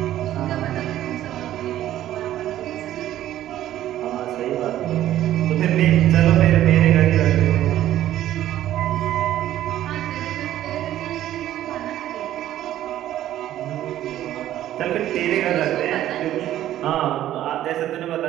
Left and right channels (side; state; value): left; quieter; 12.8 dB